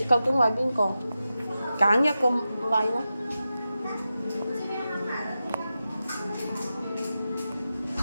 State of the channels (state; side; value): inverted; both; correlation -0.91